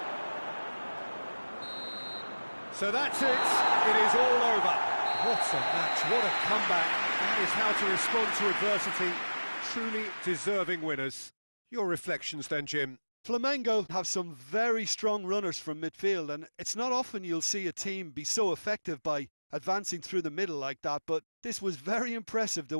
So that's it. It is all over. What a match, what a comeback. That is how to respond to adversity. Truly deserving winners. Your reflections then, Jim? Flamengo have some very strong runners from midfield, and it's not often you'll see a team be so effective by advancing through the middle like that, but this was very impressive the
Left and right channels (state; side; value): inverted; both; correlation -1.00